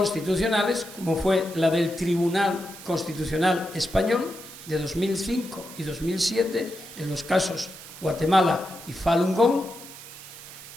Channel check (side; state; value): right; noise; hiss, 15 dB below the sound